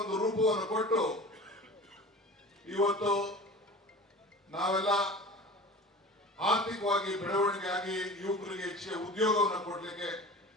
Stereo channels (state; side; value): normal; both; correlation 0.38